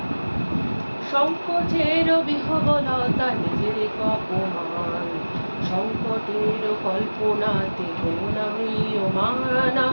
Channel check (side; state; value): both; inverted; correlation -1.00